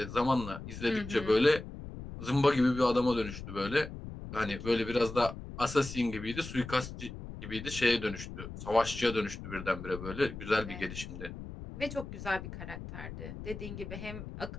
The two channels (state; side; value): noise; left; rumble, 10 dB below the sound